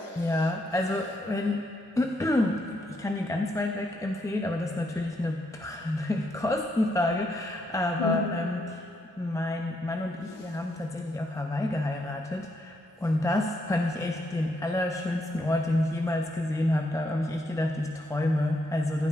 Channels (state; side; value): normal; both; correlation 0.77